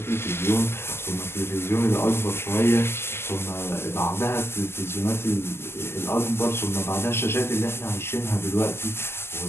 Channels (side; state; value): right; late; 0.12 ms